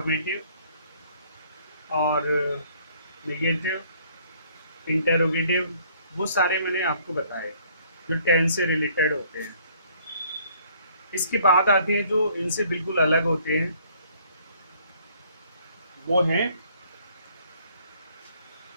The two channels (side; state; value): both; inverted; correlation -0.60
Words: और नेगेटिव, इंटेरोगेटिव, वो सारे मैंने आपको बताए जो टेंस से रिलेटेड होते हैं। इसके बाद आते हैं जो इनसे बिल्कुल अलग होते हैं, वो हैं,